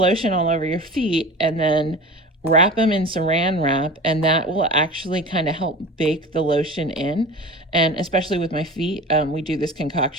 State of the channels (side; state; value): both; normal; correlation 0.35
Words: all over your feet and then wrap them in saran wrap, and that will actually kind of help bake the lotion in. And especially with my feet, we do this